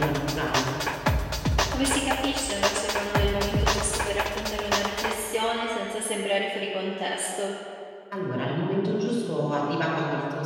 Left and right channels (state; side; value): identical; both; correlation 1.00